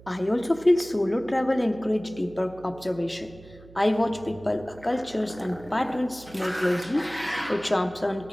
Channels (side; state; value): right; noise; hum, 22 dB below the sound